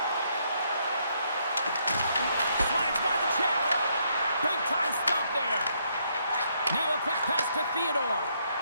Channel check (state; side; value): inverted; both; correlation -0.73